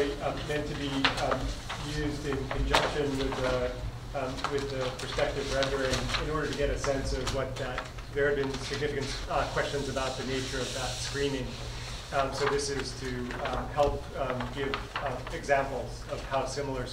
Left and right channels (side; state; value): both; identical; correlation 1.00